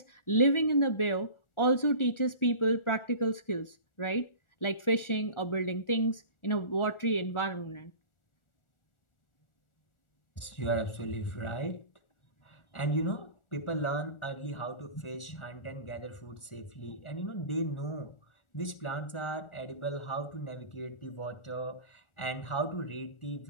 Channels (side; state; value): right; late; 1.4 ms